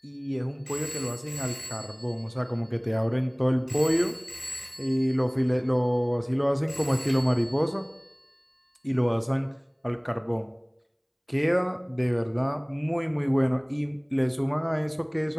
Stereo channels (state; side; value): identical; both; correlation 1.00